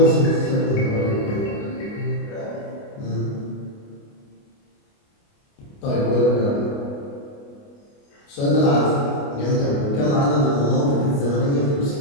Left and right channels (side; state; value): right; late; 29 ms